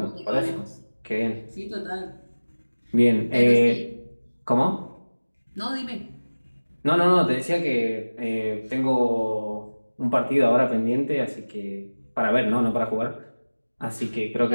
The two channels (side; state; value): both; inverted; correlation -1.00